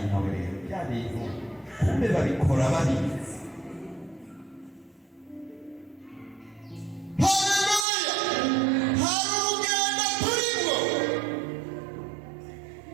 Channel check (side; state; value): left; drops out; at 7.9 s